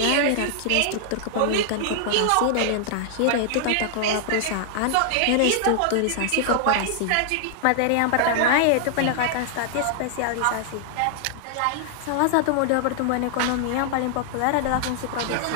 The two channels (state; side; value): different; both; correlation -0.01